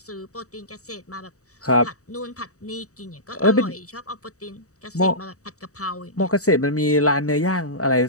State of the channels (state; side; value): late; right; 0.65 ms